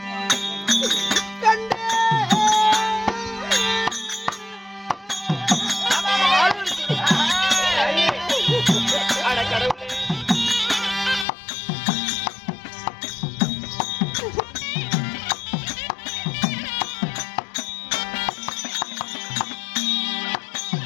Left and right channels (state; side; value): drops out; right; at 11.2 s